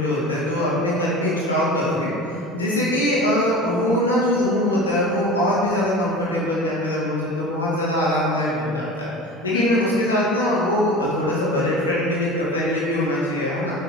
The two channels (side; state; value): both; normal; correlation 0.34